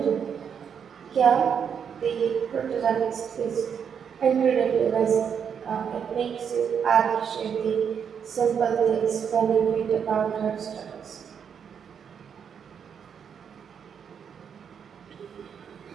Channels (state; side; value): quieter; left; 7.4 dB